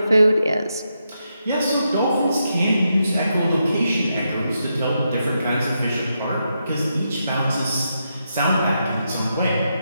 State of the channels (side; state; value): both; inverted; correlation -0.84